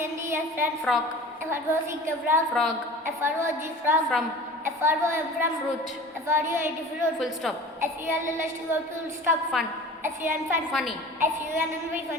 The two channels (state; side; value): normal; both; correlation 0.40